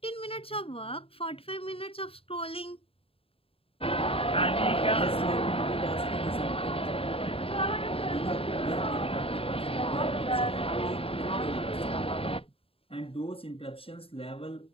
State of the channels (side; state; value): right; late; 0.27 ms